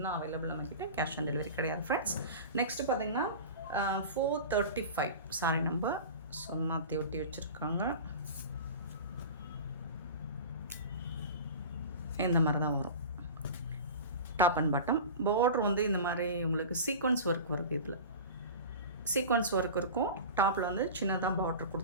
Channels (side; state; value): both; inverted; correlation -0.33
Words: அவைலபிள் நம்மக்கிட்ட, கேஷ் ஆன் டெலிவரி கிடையாது ஃப்ரெண்ட்ஸ். நெக்ஸ்ட்டு பார்த்திங்கன்னா 435 சாரி நம்பர் மாற்றி ஒட்டி வச்சுருக்காங்க. இந்த மாதிரி தான் வரும். டாப் அண்ட் பாட்டம் பார்டர் வந்து இந்த மாதிரி உங்களுக்கு சீக்வன்ஸ் ஒர்க் வருது. இதில் சீக்வன்ஸ் ஒர்க் இருக்கும். டாப்பில் வந்து சின்னதாக பார்டர்